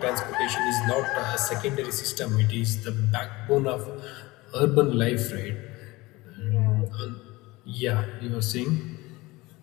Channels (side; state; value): right; quieter; 21.2 dB